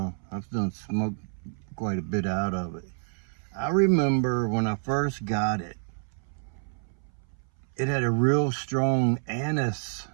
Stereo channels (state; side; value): silent; left; 59 dB below the other